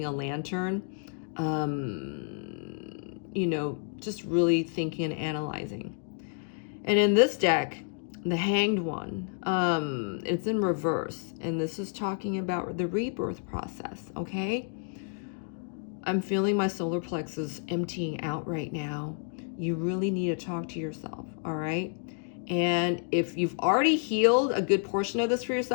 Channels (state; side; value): silent; right; 58 dB below the other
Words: a lantern. You know, just really thinking and analyzing. And in this deck, the Hanged One, it's in reverse. And this is talking about the rebirth process, okay? I'm feeling my solar plexus emptying out right now. You really need to talk to yourself, all right? And if you've already healed a good portion of this for